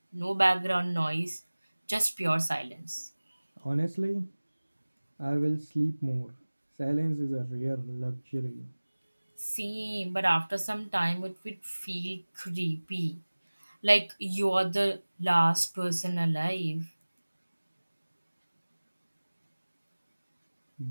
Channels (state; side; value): inverted; both; correlation -1.00